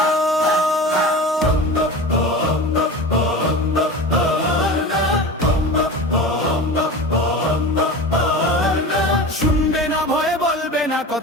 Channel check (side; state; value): both; normal; correlation 0.31